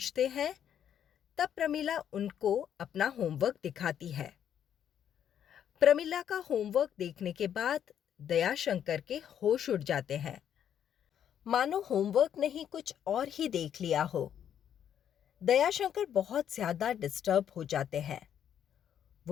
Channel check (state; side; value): quieter; right; 9.4 dB